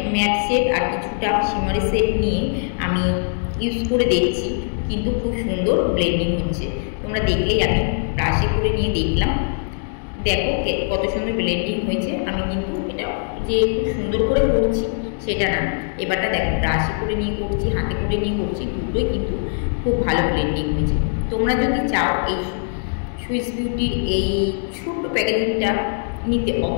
ম্যাট সেট আর কিছুটা শিমারি সেট নিয়ে আমি ইউজ করে দেখছি, কিন্তু খুব সুন্দর ব্লেন্ডিং হচ্ছে। তোমরা দেখলেই জানি, ব্রাশে করে নিয়ে দেখলাম, দেখো কত সুন্দর ব্লেন্ডিং হয়েছে। আমি কিন্তু এটা যে খুব সুন্দর করে করছি সেটা না, এবারটা দেখো ব্রাশে করে নিয়ে করছি, হাতে করে নিয়ে করছি, দুটোই কিন্তু খুব ভালো ব্লেন্ডিং হয়েছে। তোমরা যদি চাও এই সুইস বিউটির এই ছোট্ট প্যাকেজিংটা নিতে,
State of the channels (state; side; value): silent; right; 65 dB below the other